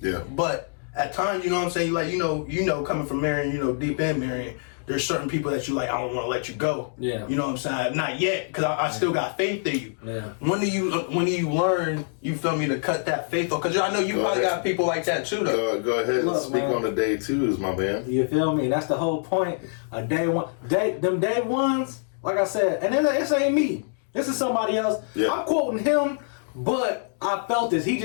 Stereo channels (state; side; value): silent; right; digital silence